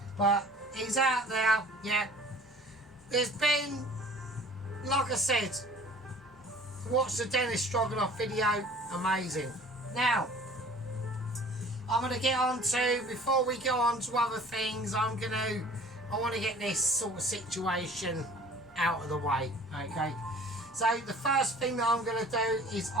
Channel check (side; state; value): both; normal; correlation 0.48